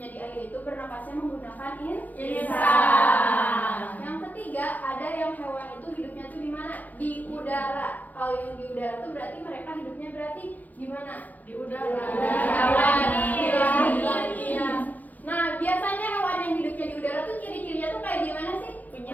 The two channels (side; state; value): right; late; 0.081 ms